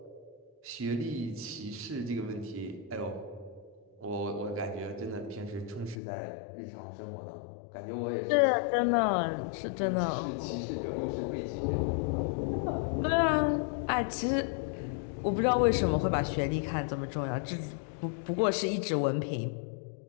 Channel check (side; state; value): right; drops out; at 6.0 s